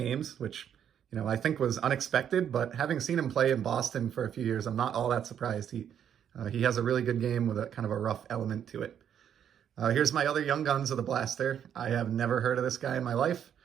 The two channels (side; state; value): left; quieter; 9.1 dB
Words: which, you know, I think was unexpected. But having seen him play in Boston for a few years, I'm not all that surprised. He has a really good game with a kind of a rough element to it. Here's my other young guns of the blaster. I have never heard of this guy in my life.